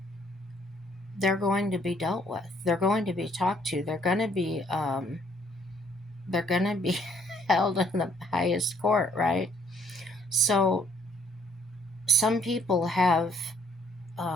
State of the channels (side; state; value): both; normal; correlation 0.64